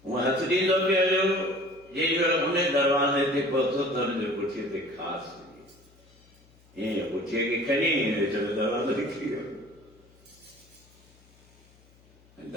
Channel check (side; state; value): left; noise; hum, 29 dB below the sound